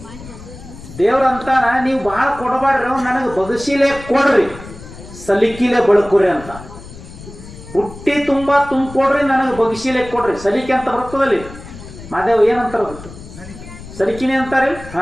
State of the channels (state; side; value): noise; left; rumble, 16 dB below the sound